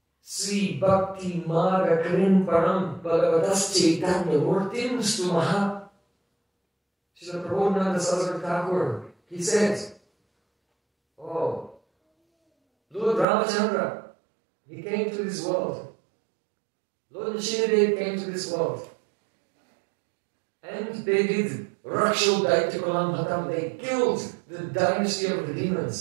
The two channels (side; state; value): left; drops out; at 13.2 s